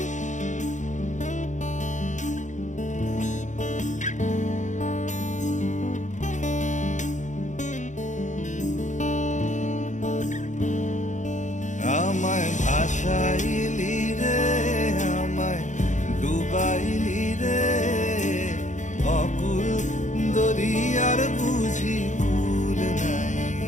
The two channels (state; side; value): late; right; 0.35 ms